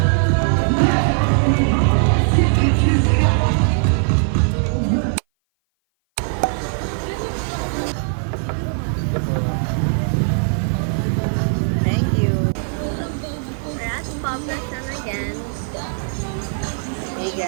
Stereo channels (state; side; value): silent; left; 58 dB below the other